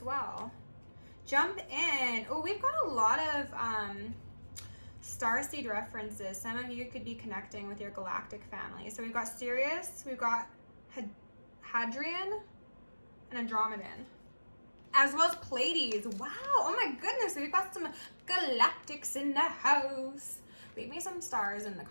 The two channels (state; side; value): inverted; both; correlation -1.00